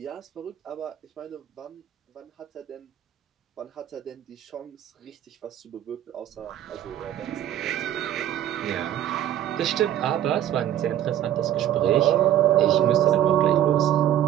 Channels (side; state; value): left; quieter; 11.5 dB